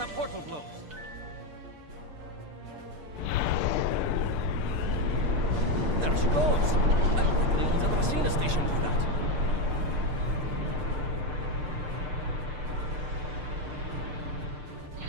portal blows. There she goes. I don't think anyone's ever seen a station do that.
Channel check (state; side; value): late; left; 6.7 ms